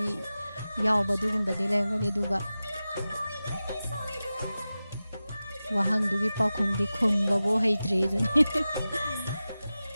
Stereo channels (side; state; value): both; inverted; correlation -0.95